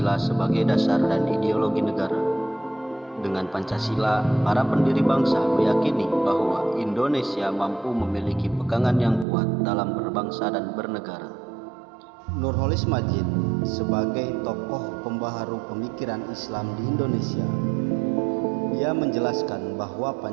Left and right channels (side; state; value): left; drops out; at 9.2 s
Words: sebagai dasar dan ideologi negara. Dengan Pancasila, para pendiri bangsa meyakini bahwa Indonesia mampu memiliki pegangan yang kuat dalam berbangsa dan bernegara. Nurholis Madjid sebagai tokoh pembaharu pemikiran Islam di Indonesia, dia menjelaskan bahwa